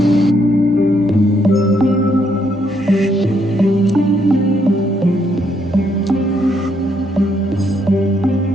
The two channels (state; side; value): normal; both; correlation 0.73